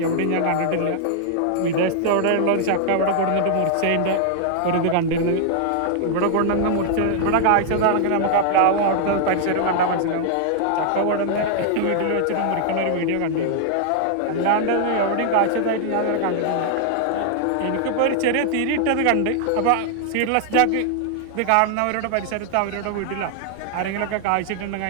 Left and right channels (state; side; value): different; both; correlation -0.01